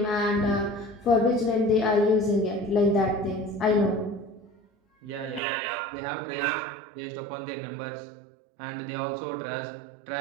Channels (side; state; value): left; drops out; at 5.4 s